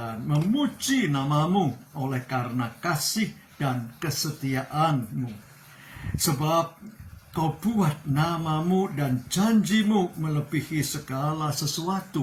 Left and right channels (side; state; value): both; identical; correlation 1.00